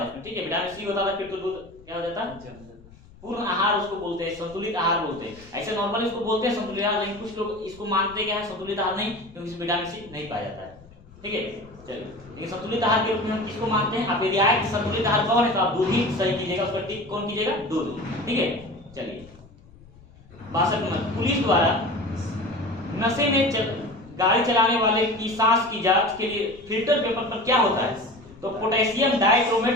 उसमें। ठीक है, विटामिन सी होता था फिर तो दूध क्या हो जाता? पूर्ण आहार उसको बोलते हैं, संतुलित आहार बोलते हैं। ऐसे नॉर्मली इसको बोलते हैं संतुलित आहार, लेकिन कुछ लोग इसको मानते क्या है? संतुलित आहार नहीं, क्योंकि इसमें विटामिन सी नहीं पाया जाता है। ठीक है, चलिए, लेकिन संतुलित आहार के रूप में हम किसको मानते हैं? आप यदि आए कि संतुलित आहार कौन है, तो आप दूध ही सही कीजिएगा, उसका टिक कौन कीजिएगा? दूध। ठीक है, चलिए 62 नंबर, पुलिस द्वारा नशे में गाड़ी चलाने वाले की सांस की जांच के लिए फिल्टर पेपर पर क्या होता है? तो potassium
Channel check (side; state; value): left; noise; rumble, 23 dB below the sound